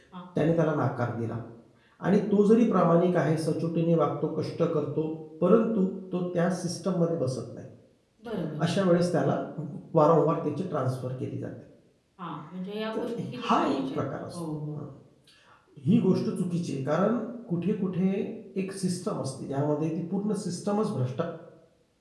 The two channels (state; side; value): identical; both; correlation 1.00